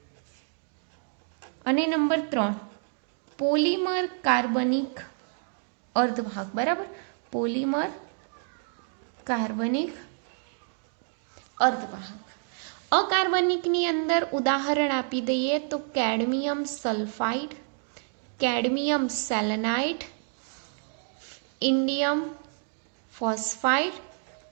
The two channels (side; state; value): left; silent; 59 dB below the other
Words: અને નંબર 3 પોલિમર કાર્બનિક અર્ધવાહક. બરાબર, પોલિમર કાર્બનિક અર્ધવાહક. અકાર્બનિકની અંદર ઉદાહરણ આપી દઈએ તો cadmium sulphide, cadmium selenide, indium phosphide,